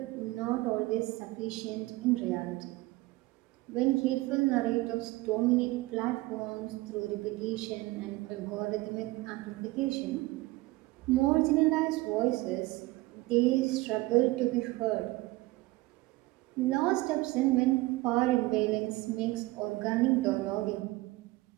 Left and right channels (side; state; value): left; quieter; 20.4 dB